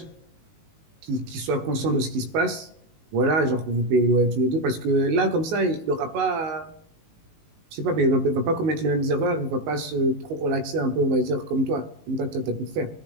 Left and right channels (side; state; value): left; late; 19 ms